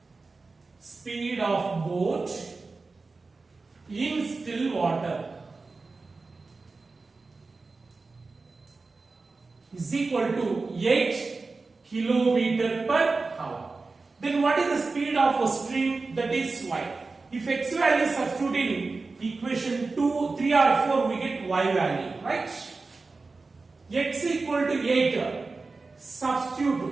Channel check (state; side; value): quieter; left; 3.9 dB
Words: Speed of boat in still water is equal to 8 kilometer per hour. Then what is the speed of a stream? That is y. If x value is substituted in equation 2, 3 or 4, we get y value, right? X equal to 8,